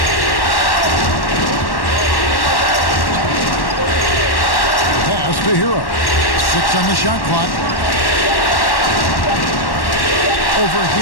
Pass to Hero. 6 on the shot clock. Over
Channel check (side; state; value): right; late; 1.1 ms